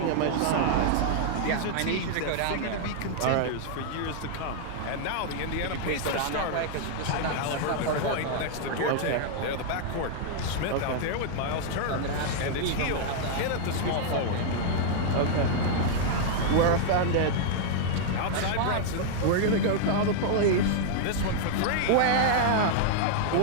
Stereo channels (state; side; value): different; both; correlation -0.01